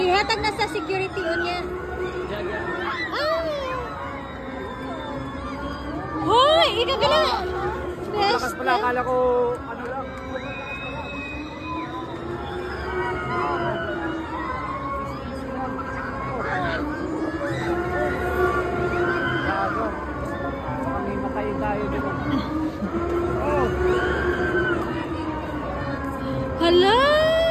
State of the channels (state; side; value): identical; both; correlation 1.00